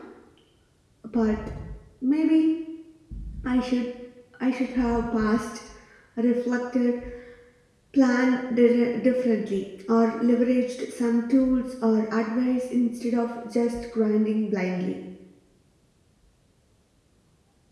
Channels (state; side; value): identical; both; correlation 1.00